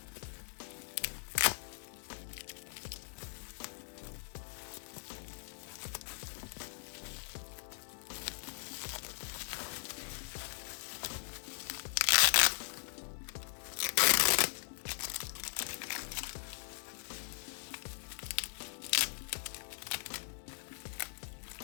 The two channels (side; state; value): right; silent; digital silence